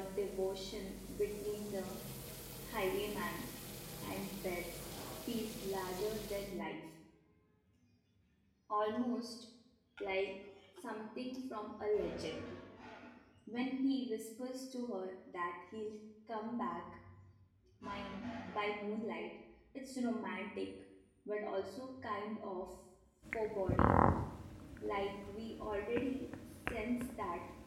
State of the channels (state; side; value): identical; both; correlation 1.00